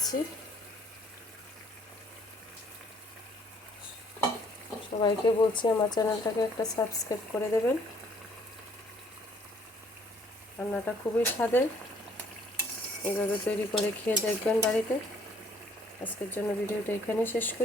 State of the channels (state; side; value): normal; both; correlation 0.62